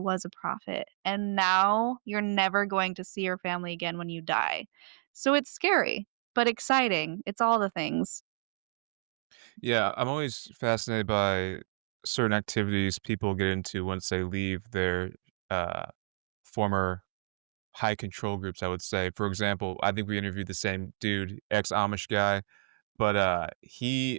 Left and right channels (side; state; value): left; silent; 57 dB below the other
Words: a prophet?" And now you're never going to see your family again when you die. So it's scary, but exciting. It's all the things. Yeah, I'm always fascinated by certain activities people get into once they leave their, uh, former high control groups, I would say. For example, I think we interviewed the same dude, ex-Amish guy, but,